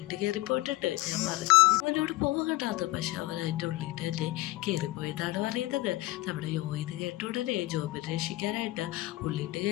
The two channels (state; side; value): quieter; right; 18.8 dB